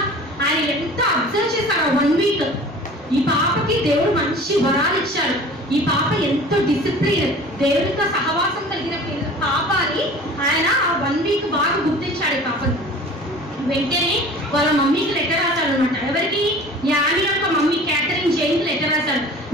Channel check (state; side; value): normal; both; correlation 0.43